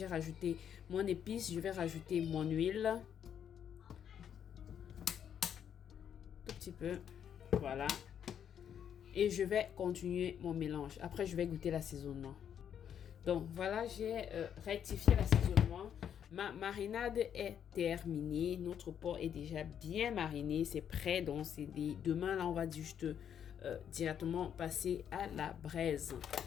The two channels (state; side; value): quieter; right; 8.8 dB